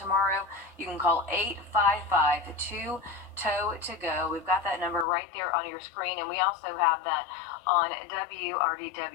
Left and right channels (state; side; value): drops out; right; at 5.1 s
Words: You can call 855-2-TOW-TO-GO. We've got that number right there on your screen, and we also have that on